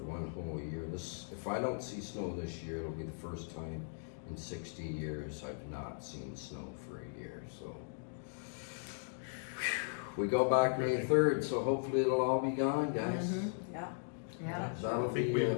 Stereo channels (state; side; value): silent; right; digital silence